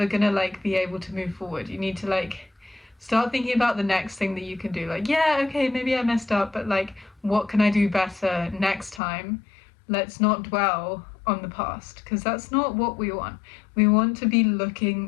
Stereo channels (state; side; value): drops out; right; at 9.0 s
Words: gonna like be able to move forward. You need to like start thinking about the next thing that you can do. Like, yeah, okay, maybe I messed up, but like, what can I do better next time? Let's not dwell on the past, because that's not what we want. We want to be